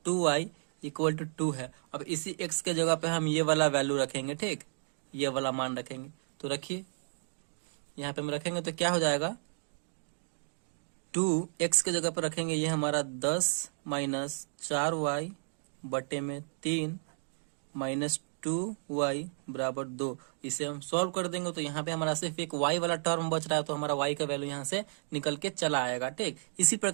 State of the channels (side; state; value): left; silent; digital silence